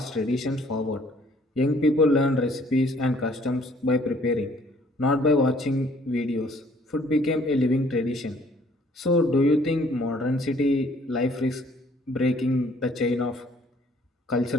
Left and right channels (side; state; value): both; normal; correlation 0.60